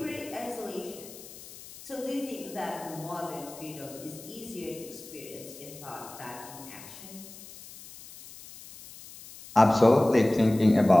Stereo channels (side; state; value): left; noise; hiss, 17 dB below the sound